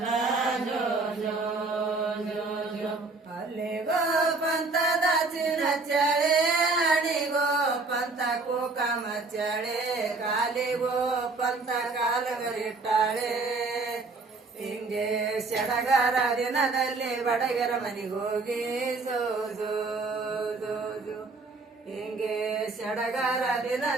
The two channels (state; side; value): quieter; left; 3.7 dB